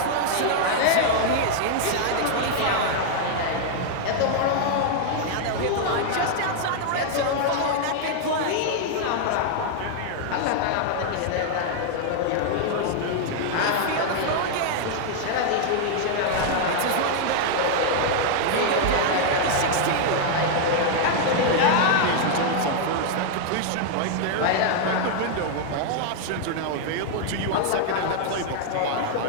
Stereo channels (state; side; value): different; both; correlation -0.01